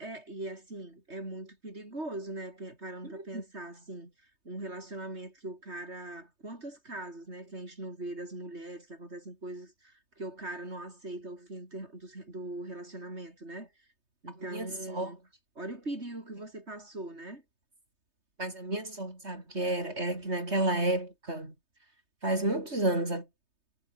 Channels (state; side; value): late; left; 3.2 ms